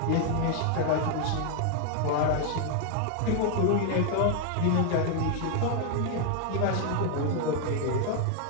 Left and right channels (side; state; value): both; different; correlation 0.00